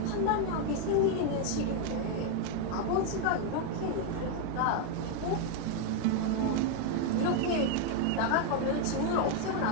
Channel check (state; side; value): different; both; correlation 0.01